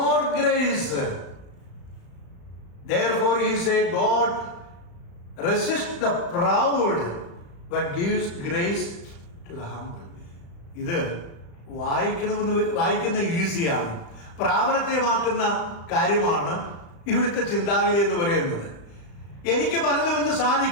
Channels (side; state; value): right; late; 35 ms